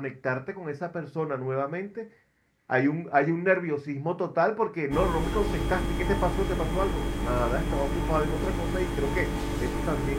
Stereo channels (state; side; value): identical; both; correlation 1.00